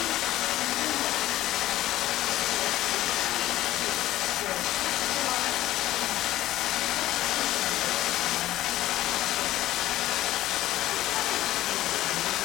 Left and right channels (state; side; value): quieter; right; 15.0 dB